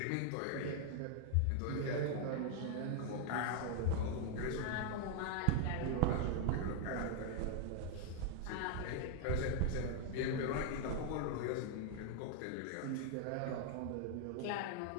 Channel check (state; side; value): different; both; correlation 0.00